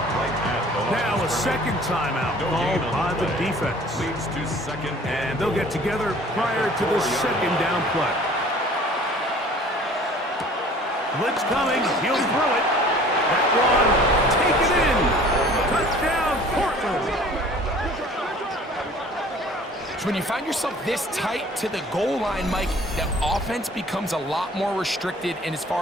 Now a second timeout called by the defense. And they'll get together prior to the second down play. Blitz coming. He'll throw it. That one, take it in. Touchdown, Portland. So when you find yourself this tight to the goal line, Mike, the offense becomes a lot more restricted in as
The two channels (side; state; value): both; normal; correlation 0.49